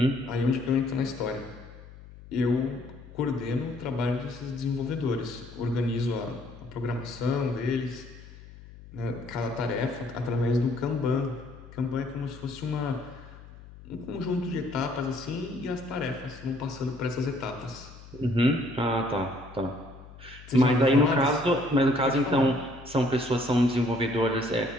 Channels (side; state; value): left; noise; hum, 18 dB below the sound